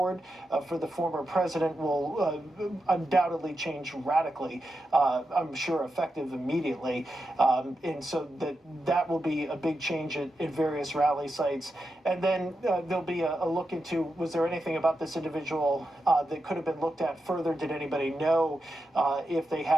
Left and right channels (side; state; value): both; normal; correlation 0.88